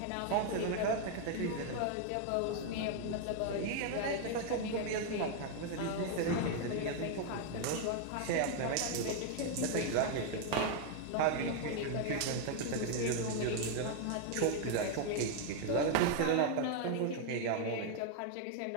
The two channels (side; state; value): both; different; correlation 0.00